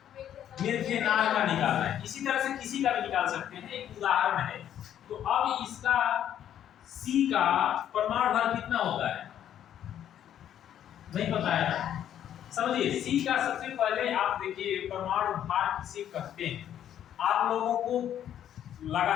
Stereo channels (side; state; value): right; quieter; 10.4 dB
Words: मेथेनॉल का निकालना है। इसी तरह से किसी का भी निकाल सकते हैं, एक उदाहरण है। तो अब इसका C का परमाणु भार कितना होता है? नहीं पता है ना? समझिए, C का सबसे पहले आप देखिए परमाणु भार किसे कहते हैं। आप लोगों को